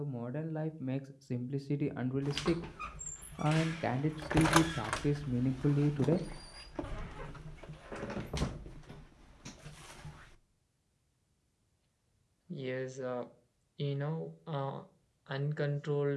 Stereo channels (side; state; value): both; identical; correlation 1.00